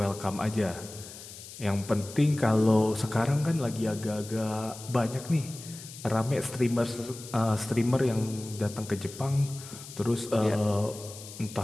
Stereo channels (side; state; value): left; noise; hiss, 14 dB below the sound